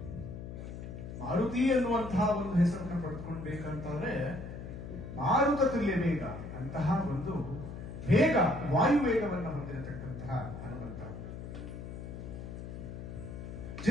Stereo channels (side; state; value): left; noise; hum, 9 dB below the sound